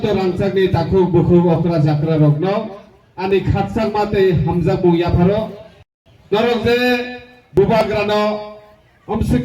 रांसागनि ताखु बुखु अक्रा जाक्रा रगनो आनि खातसाक माते हामजा बुया फारो नरक जे बुबाग्रानो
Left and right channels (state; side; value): identical; both; correlation 1.00